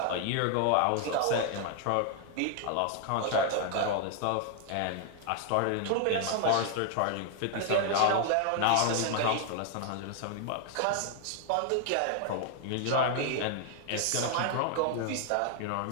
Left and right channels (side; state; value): both; different; correlation 0.00